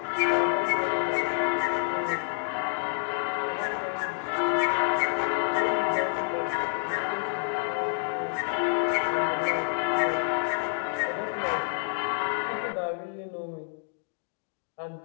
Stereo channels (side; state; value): right; silent; digital silence